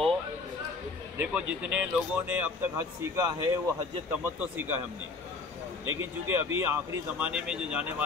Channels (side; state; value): right; quieter; 4.0 dB